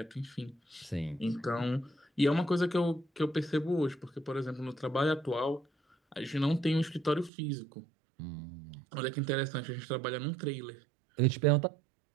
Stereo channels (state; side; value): drops out; left; at 7.3 s